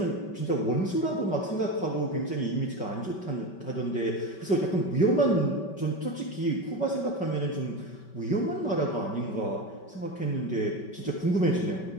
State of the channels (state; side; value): late; right; 5.3 ms